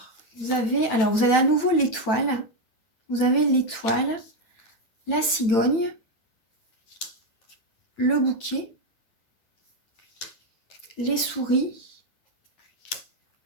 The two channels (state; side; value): late; right; 9.0 ms